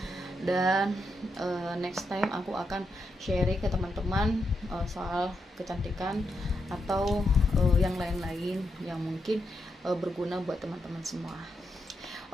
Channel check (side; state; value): both; normal; correlation 0.83